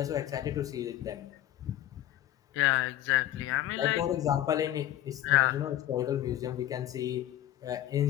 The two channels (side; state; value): right; quieter; 13.2 dB